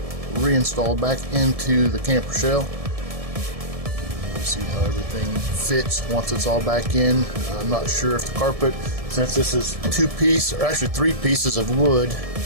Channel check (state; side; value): late; left; 1.7 ms